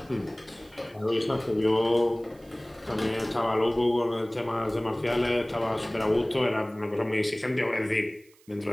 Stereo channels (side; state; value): right; noise; hiss, 29 dB below the sound